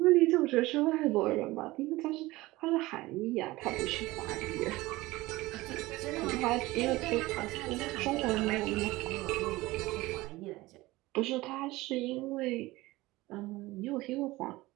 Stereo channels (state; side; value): quieter; left; 19.5 dB